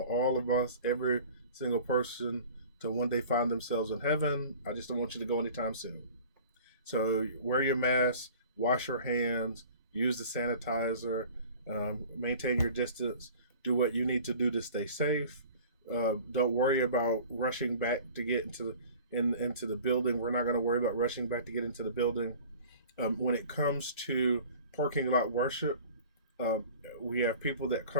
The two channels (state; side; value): inverted; both; correlation -0.44